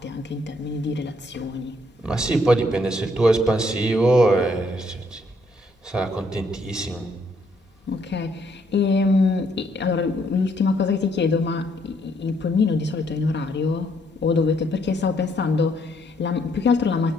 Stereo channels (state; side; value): normal; both; correlation 0.70